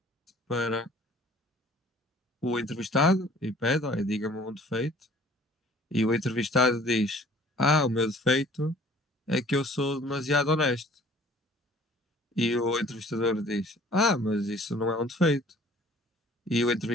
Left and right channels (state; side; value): normal; both; correlation 0.52